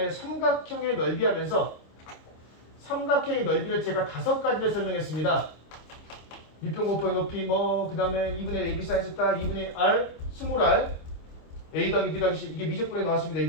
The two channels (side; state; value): right; late; 26 ms